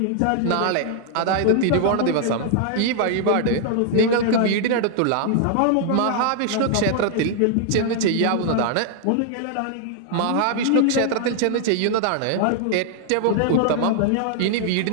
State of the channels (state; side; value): different; both; correlation 0.00